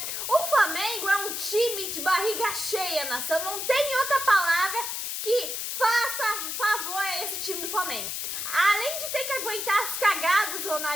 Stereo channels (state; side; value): noise; left; hiss, 3 dB below the sound